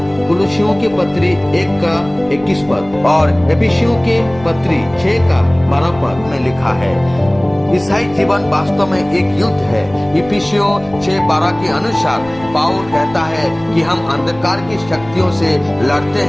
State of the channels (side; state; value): left; noise; rumble, 20 dB below the sound